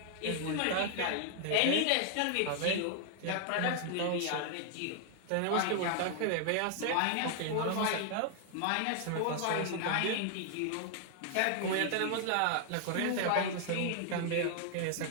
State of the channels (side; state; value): both; different; correlation 0.00